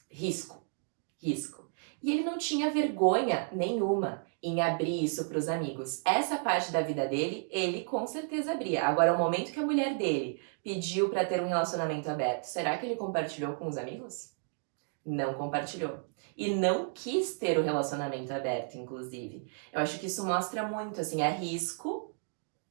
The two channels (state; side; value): silent; left; 56 dB below the other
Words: Risco. E ele não tinha vergonha nenhuma em abrir isso para os amigos. Essa parte da vida dele, ele com certeza abria. Agora, o momento que a mulher dele pediu para ter um relacionamento aberto, será que ele compartilhou com os amigos? Não compartilhou. E não quis ter o relacionamento aberto, inclusive. Eu acho que isso mostra muito, assim, é risco,